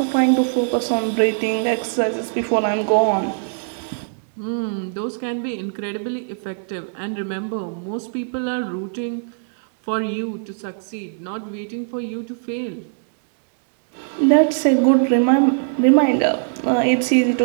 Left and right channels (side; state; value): left; silent; digital silence